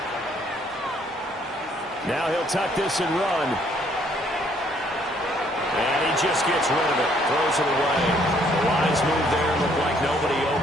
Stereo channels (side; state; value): both; normal; correlation 0.65